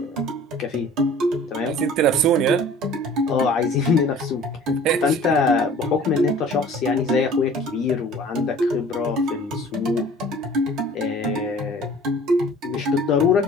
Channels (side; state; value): both; normal; correlation 0.47